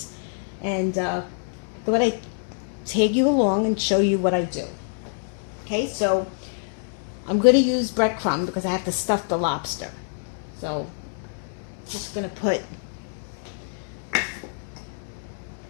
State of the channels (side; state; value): right; silent; digital silence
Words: And I thought I'd take you along and show you what I do. Okay, so I'm going to use breadcrumb because I have to stuff the lobster. So just going to put